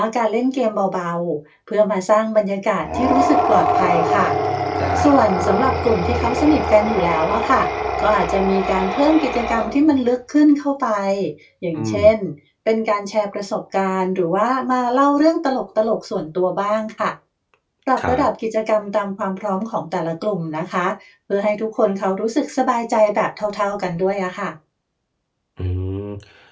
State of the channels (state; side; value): identical; both; correlation 1.00